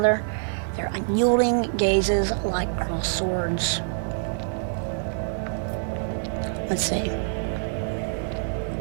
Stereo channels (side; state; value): left; silent; digital silence